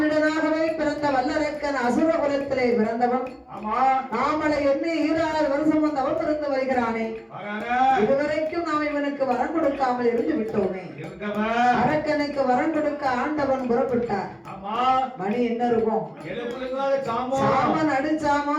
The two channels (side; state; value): both; identical; correlation 1.00